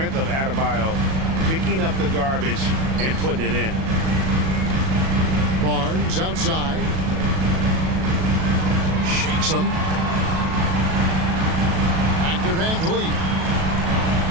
of Adebayo picking up the garbage and putting it in. Barnes outside. Shakes him. Back to VanVleet.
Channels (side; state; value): left; late; 37 ms